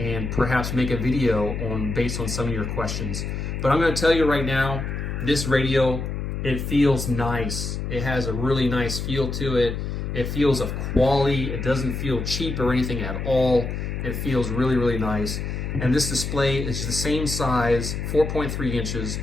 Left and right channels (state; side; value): noise; left; hum, 4 dB below the sound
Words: perhaps make a video based on some of your questions. But I'm going to tell you right now, this radio, it feels nice. It has a really nice feel to it. It feels of quality. It doesn't feel cheap or anything at all. It feels really, really nice. And this display is the same size, 4.3 inches,